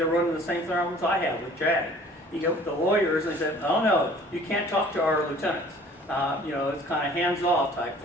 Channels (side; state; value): both; normal; correlation 0.51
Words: running the same problems I have with JAG. You get with the lawyers, and they said, oh no, you can't talk to our lieutenants. It's kind of hands-off type